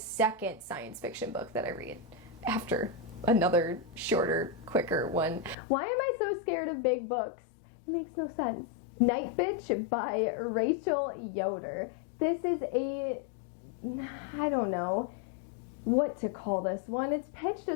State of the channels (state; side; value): drops out; right; at 5.6 s